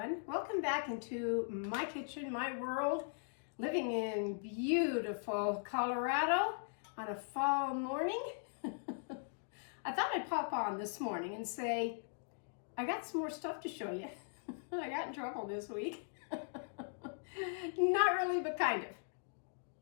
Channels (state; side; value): silent; right; digital silence